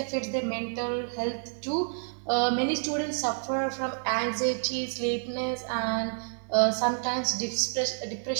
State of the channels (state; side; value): silent; left; 59 dB below the other